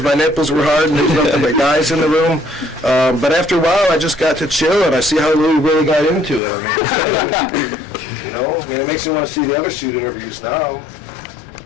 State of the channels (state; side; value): drops out; right; at 6.4 s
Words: my nipples were hard and there's nothing but guys in the room. But after a while, I just got to chill and I see how Louis really got into it. I mean, you know, I mean, it makes me want to see the other shoot interviews now.